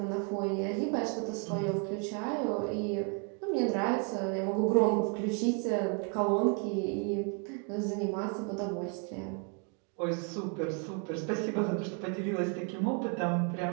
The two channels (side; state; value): left; quieter; 36.6 dB